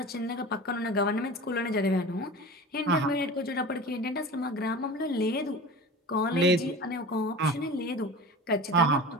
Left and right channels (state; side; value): normal; both; correlation 0.34